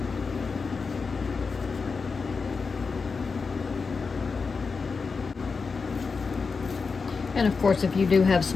And of course, if you do have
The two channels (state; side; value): quieter; right; 4.8 dB